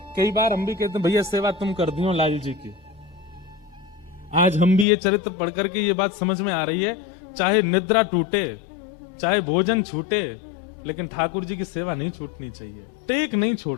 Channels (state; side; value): drops out; right; at 4.9 s